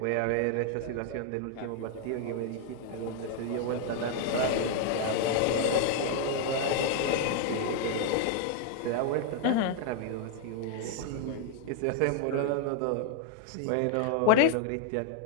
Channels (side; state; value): both; different; correlation 0.00